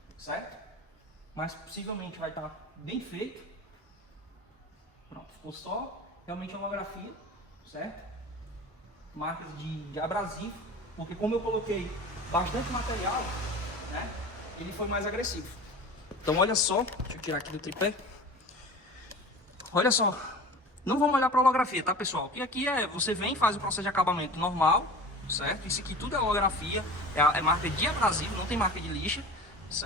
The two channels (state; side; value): normal; both; correlation 0.36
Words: certo? Mas possivelmente vai estar bem feito. Pronto, ficou só realmente a holografia, certo? Marcas de abrasivo, porque como eu coloquei bastante material, né? Ele foi mais agressivo. Então olha só, deixa eu tirar aqui do tripé. Olha só, não vamos olhar para a holografia, tá pessoal? Porque aqui você vem e faz o processo de acabamento normal, certo? Isso aqui tudo é holografia, é marca de abrasivo, não tem marca de lixa,